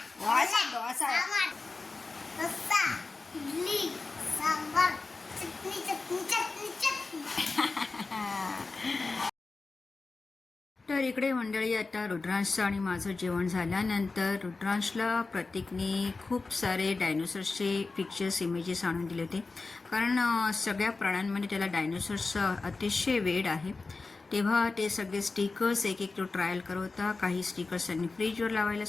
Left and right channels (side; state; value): right; quieter; 3.8 dB